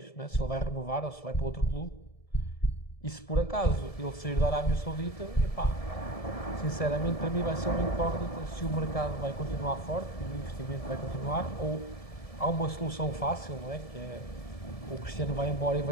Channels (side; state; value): right; late; 1.7 ms